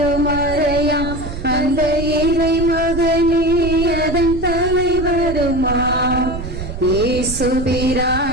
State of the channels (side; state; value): right; noise; rumble, 8 dB below the sound